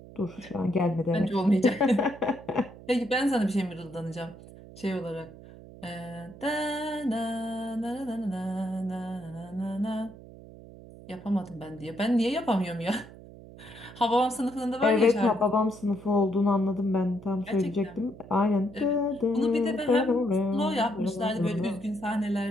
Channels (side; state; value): right; noise; hum, 18 dB below the sound